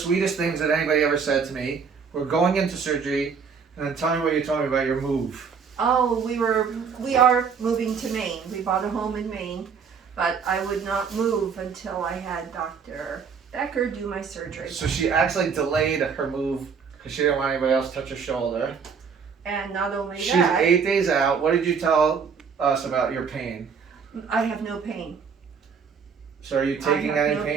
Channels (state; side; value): quieter; left; 6.1 dB